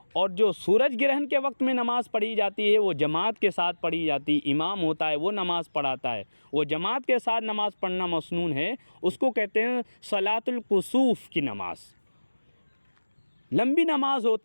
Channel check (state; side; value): inverted; both; correlation -1.00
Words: اور جو سورج گرہن کے وقت میں نماز پڑھی جاتی ہے وہ جماعت کے ساتھ پڑھی جاتی ہے، امام ہوتا ہے وہ نماز پڑھاتا ہے، وہ جماعت کے ساتھ نماز پڑھنا مسنون ہے، اس کو کہتے ہیں صلاۃ الکسوف کی نماز۔ لمبی نماز